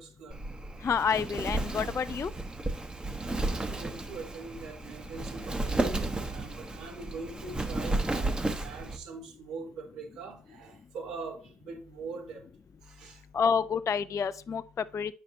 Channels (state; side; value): normal; both; correlation 0.72